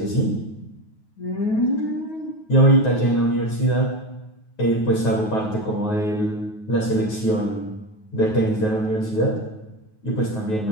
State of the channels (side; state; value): right; late; 9.4 ms